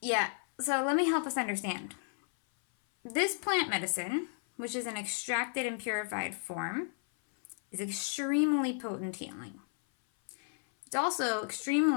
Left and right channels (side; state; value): right; silent; 56 dB below the other